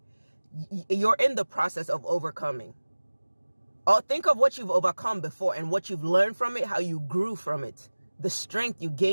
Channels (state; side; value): inverted; both; correlation -1.00